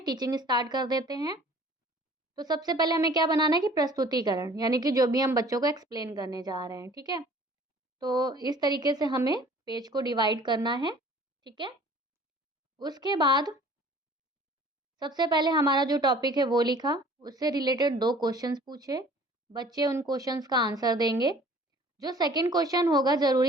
स्टार्ट कर देते हैं। तो सबसे पहले हमें क्या बनाना है कि प्रस्तुतिकरण, यानी कि जो भी हम बच्चों को एक्सप्लेन करने जा रहे हैं। ठीक है, तो इस तरीके से हमें पेज को डिवाइड करना है। ठीक है, उसके बाद सबसे पहले हमारा जो टॉपिक है वो लिखा, उससे रिलेटेड 2 क्वेश्चंस पूछे, बच्चे उन क्वेश्चंस का आंसर देंगे। जो सेकंड क्वेश्चन होगा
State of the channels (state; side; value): normal; both; correlation 0.50